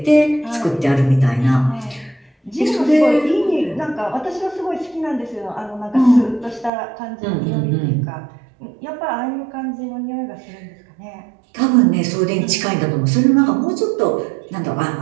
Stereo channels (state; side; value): drops out; left; at 6.7 s